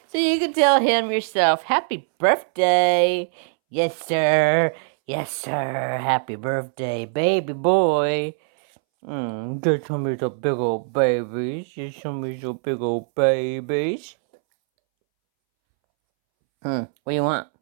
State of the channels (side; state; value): left; silent; 64 dB below the other